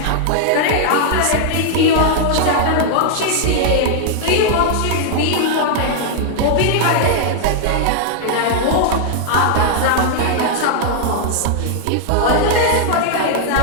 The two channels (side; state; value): both; different; correlation -0.01